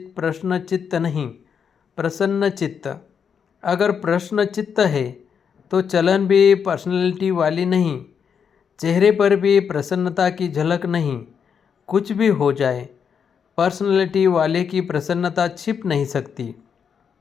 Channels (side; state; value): right; quieter; 7.0 dB